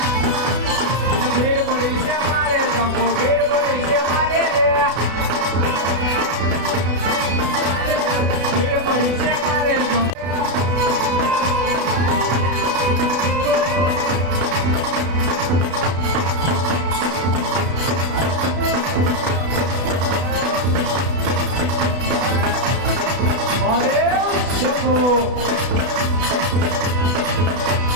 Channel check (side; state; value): left; late; 32 ms